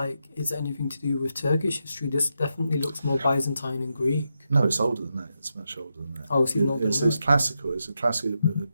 it's anything to do with Turkish history. This definitely looks more Byzantine and Greek. No, it's older than that. It's much older than that. Oh, it's even older than that. It's classical. It's a classical, it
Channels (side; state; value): both; inverted; correlation -0.85